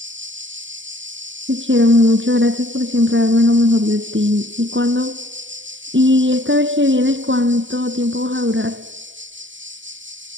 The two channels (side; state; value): left; late; 0.55 ms